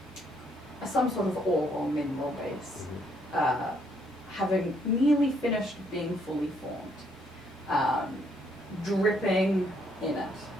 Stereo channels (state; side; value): normal; both; correlation 0.70